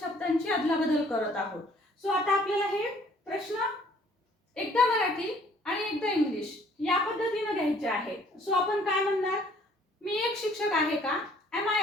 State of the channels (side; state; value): both; normal; correlation 0.59